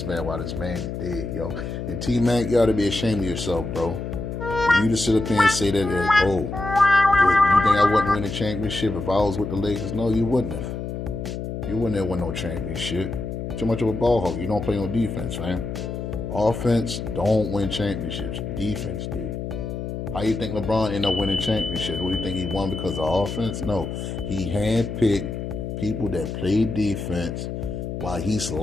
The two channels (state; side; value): noise; left; hum, 5 dB below the sound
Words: man while this man dead, yo. And T-Mac, you ought to be ashamed of yourself, bro. For you to sit up here and say that, oh, you think I wouldn't win a championship if I was with the Lakers? No, you wouldn't have. You wouldn't have won no championship. Too much of a ball hog. You don't play no defense, fam. Offense don't win championships. Defense did. How you think LeBron ended up winning championships? What do you think he won because of offense? No. He handpicked people that play defense while he's